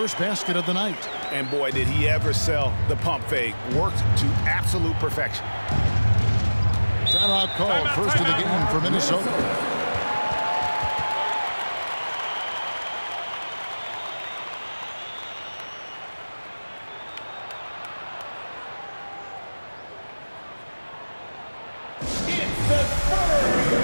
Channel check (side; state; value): both; inverted; correlation -1.00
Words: basket of the night. And boy, did he ever sell the pump fake. Worked to absolute perfection. Timeout called. First of the game for Minnesota. It's the